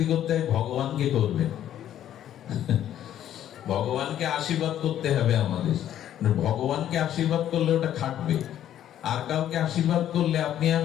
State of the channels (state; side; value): quieter; right; 11.2 dB